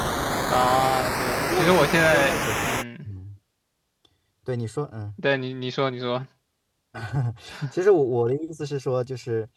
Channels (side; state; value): both; identical; correlation 1.00